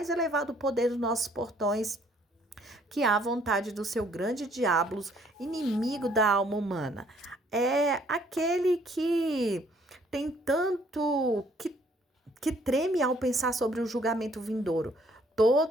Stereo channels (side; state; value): both; normal; correlation 0.63